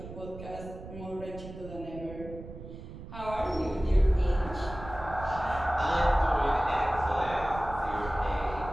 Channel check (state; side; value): noise; right; rumble, 13 dB below the sound